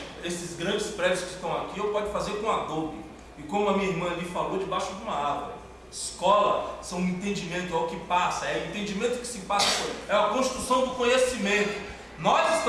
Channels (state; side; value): identical; both; correlation 1.00